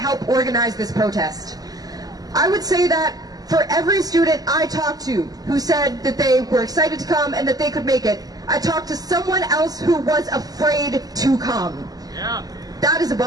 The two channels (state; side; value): late; left; 0.18 ms